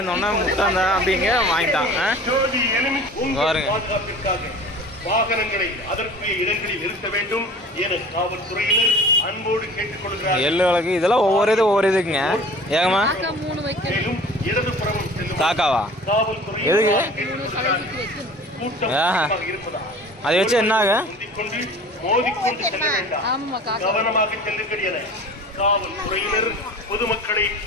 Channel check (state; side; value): normal; both; correlation 0.42